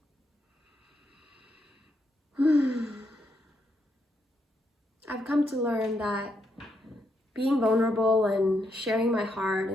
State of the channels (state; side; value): normal; both; correlation 0.79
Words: I've come to learn that being vulnerable and sharing my heart